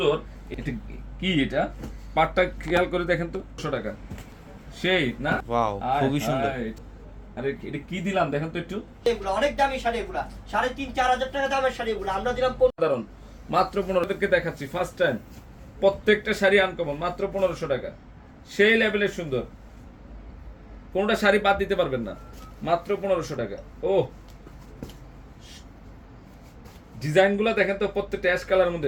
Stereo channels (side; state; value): both; identical; correlation 1.00